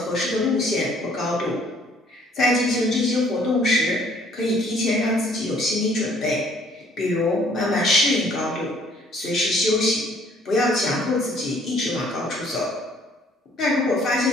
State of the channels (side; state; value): both; normal; correlation 0.60